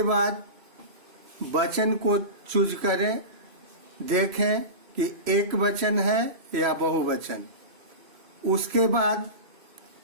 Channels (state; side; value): late; left; 3.0 ms